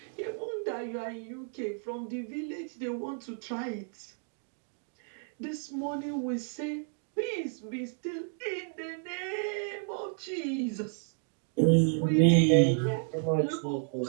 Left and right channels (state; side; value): silent; left; 57 dB below the other